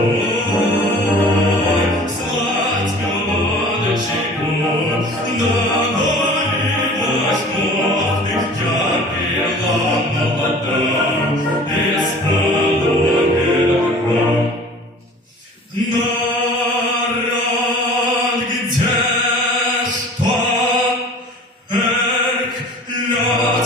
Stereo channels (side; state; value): both; normal; correlation 0.45